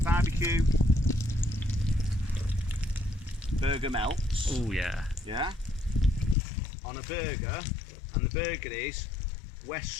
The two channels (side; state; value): right; drops out; at 6.4 s